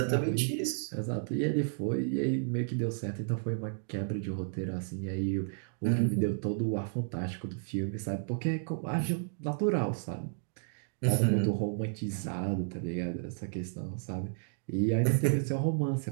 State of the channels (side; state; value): left; silent; digital silence